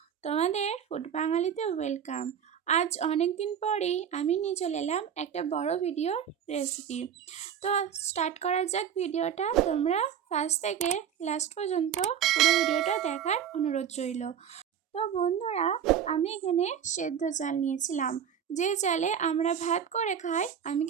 তোমাদের ফুড বাঙালিতে ওয়েলকাম। আজ অনেক দিন পরেই আমি নিয়ে চলে এলাম একটা বড় ভিডিওর রেসিপি। তো স্টার্ট করা যাক ভিডিওটা। তোমরা ফার্স্ট থেকে লাস্ট পর্যন্ত পুরো ভিডিওটা দেখার অনুরোধ রইল। তো বন্ধুরা, আমি এখানে সেদ্ধ চাল নিয়েছিলাম। যে চালে আমরা ভাত করে খাই, আমি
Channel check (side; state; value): left; quieter; 8.6 dB